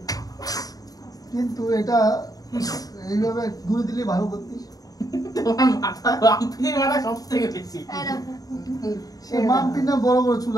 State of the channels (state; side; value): late; right; 0.18 ms